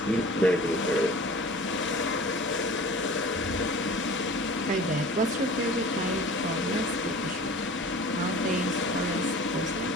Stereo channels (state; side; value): normal; both; correlation 0.42